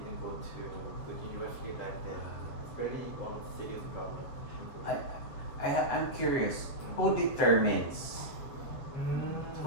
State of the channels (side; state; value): right; late; 7.5 ms